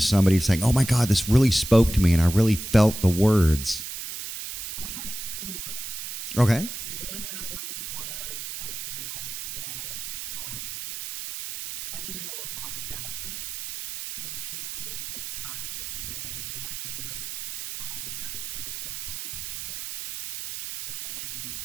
somebody saying, oh my God, this really spoke to me and I really felt the words. I have two of them. Okay. One of them was a girl that I didn't know a lot about her, and she pulled me aside, and one of them was very close to home for her, and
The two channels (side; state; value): right; noise; hiss, 7 dB below the sound